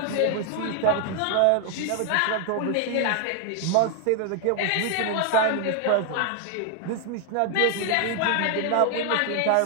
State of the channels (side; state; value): both; different; correlation 0.00